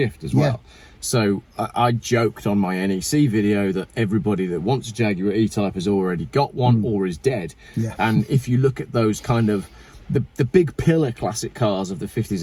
as well. So I joked on my NEC video that everybody that wants a Jaguar E-Type has already got one or is dead. And if you look at those kind of the big pillar classic cars of the 50s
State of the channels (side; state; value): both; identical; correlation 1.00